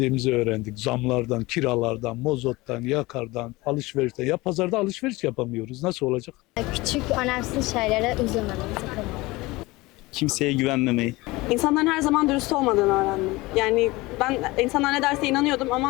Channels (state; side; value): quieter; right; 21.4 dB